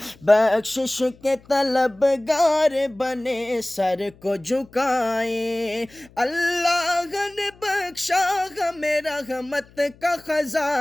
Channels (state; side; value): noise; left; hum, 26 dB below the sound